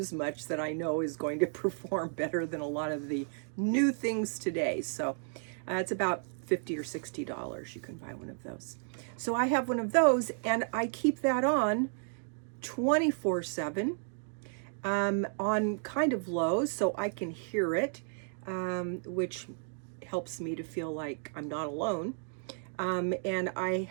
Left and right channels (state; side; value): silent; left; 56 dB below the other